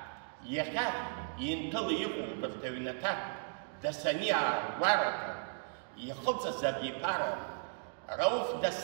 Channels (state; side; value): silent; left; digital silence